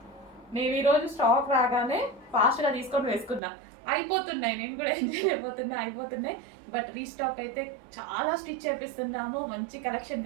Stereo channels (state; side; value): drops out; left; at 3.4 s